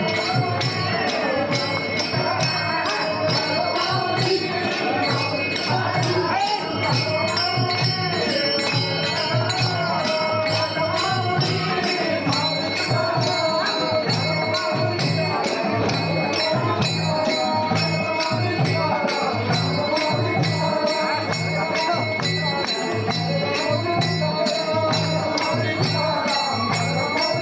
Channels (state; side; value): identical; both; correlation 1.00